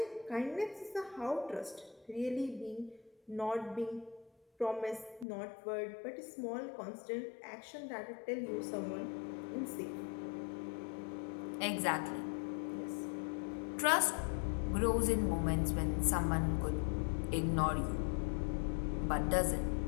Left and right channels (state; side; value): drops out; right; at 5.2 s